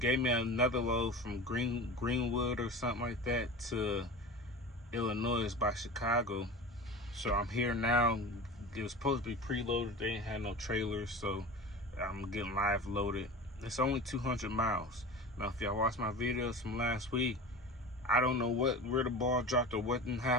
me another load from Greenwood or something like that to Illinois by Chicago. So I'm here now. It was supposed to be preloaded. They ain't had no trailers, so I'm getting live loaded. It's only 200 miles. Now, if y'all watched my videos from last week, I don't know where the ball dropped or what didn't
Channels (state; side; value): normal; both; correlation 0.33